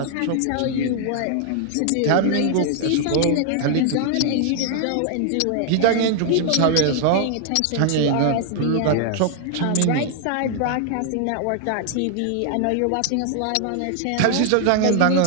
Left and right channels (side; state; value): both; different; correlation 0.00